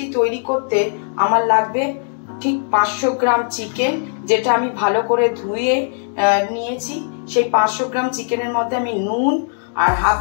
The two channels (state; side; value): silent; right; 61 dB below the other